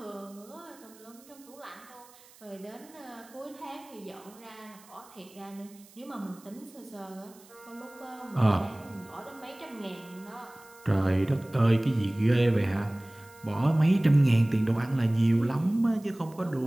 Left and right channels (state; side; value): noise; right; hiss, 25 dB below the sound